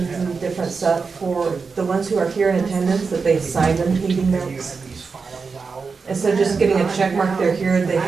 and different stuff for the ones who are here in attendance, that they sign them meeting notes. Instead of just getting a check mark, they're here, they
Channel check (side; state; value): left; quieter; 4.9 dB